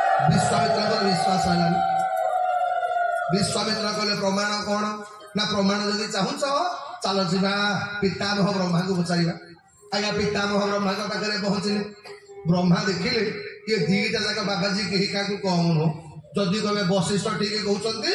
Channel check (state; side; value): identical; both; correlation 1.00